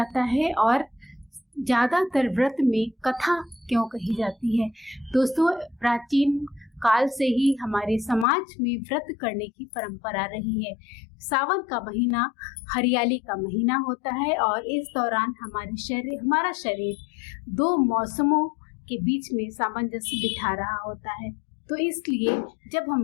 है और ज़्यादातर व्रत में कथा क्यों कही जाती है। दोस्तों, प्राचीन काल से ही हमारे समाज में व्रत करने की परंपरा रही है। सावन का महीना हरियाली का महीना होता है और इस दौरान हमारा शरीर दो मौसमों के बीच में सामंजस्य बिठा रहा होता है। तो इसलिए जब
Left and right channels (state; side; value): drops out; right; at 8.2 s